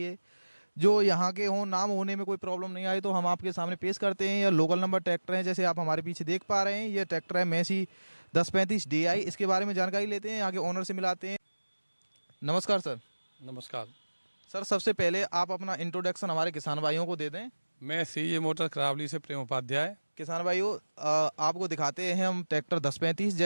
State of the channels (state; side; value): inverted; both; correlation -1.00